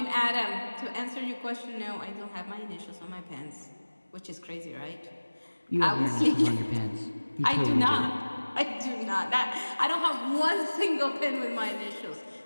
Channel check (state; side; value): inverted; both; correlation -1.00